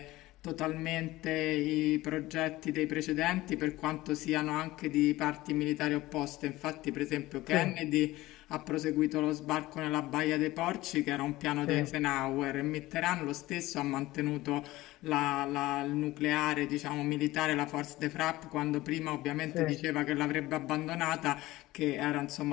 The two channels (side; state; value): right; quieter; 17.9 dB